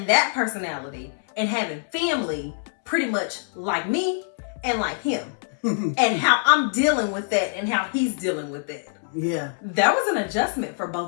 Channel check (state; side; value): silent; right; 62 dB below the other